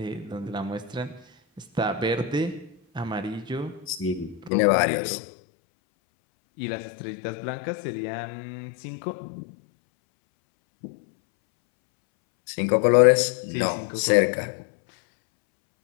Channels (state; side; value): drops out; right; at 4.5 s